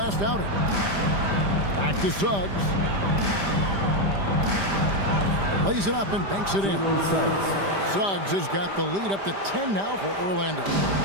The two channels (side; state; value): left; late; 5.0 ms